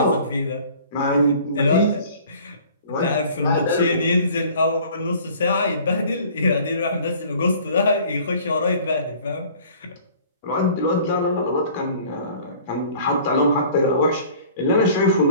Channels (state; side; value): inverted; both; correlation -0.50